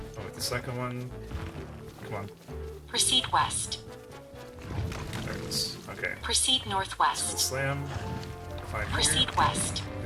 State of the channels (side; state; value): both; identical; correlation 1.00